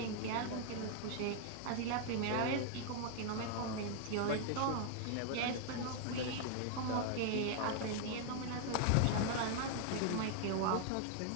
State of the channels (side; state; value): both; different; correlation 0.00